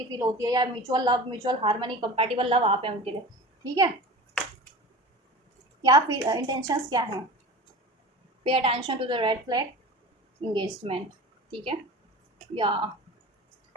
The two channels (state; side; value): normal; both; correlation 0.35